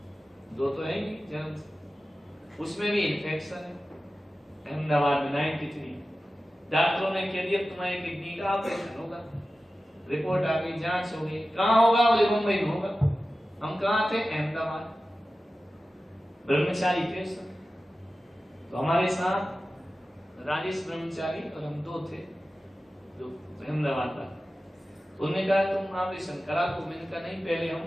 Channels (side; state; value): both; normal; correlation 0.94